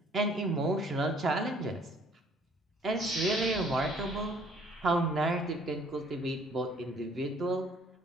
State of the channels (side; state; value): both; normal; correlation 0.59